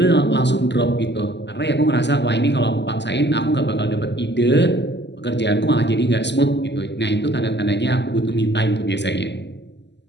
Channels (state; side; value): late; right; 0.50 ms